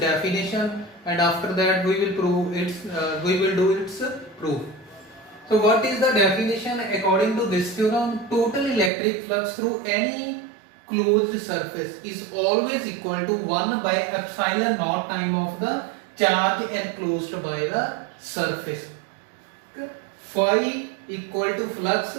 and after that we will do its proof. So what is the definition according to this theorem? Total electric flux through any closed surface is always equal to 1 by epsilon naught time of the charge enclosed by the surface. Phi equal to flux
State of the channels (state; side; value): drops out; left; at 8.9 s